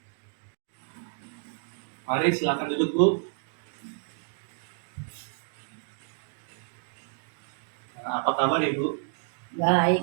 Mari silakan duduk, Bu. Apa kabar, Ibu?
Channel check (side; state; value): left; silent; digital silence